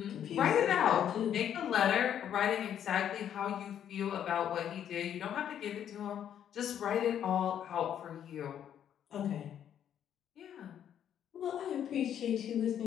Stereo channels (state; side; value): quieter; right; 9.7 dB